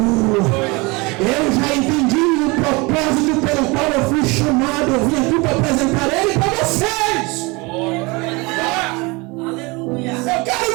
Eu já entendi o propósito pelo qual eu fui chamado. Eu vim aqui para apresentar ele para vocês. Aleluia! Eu quero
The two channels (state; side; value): quieter; left; 25.8 dB